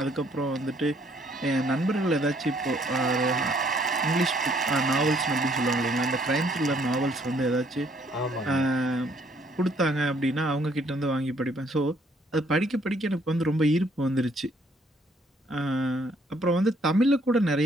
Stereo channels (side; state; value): both; normal; correlation 0.65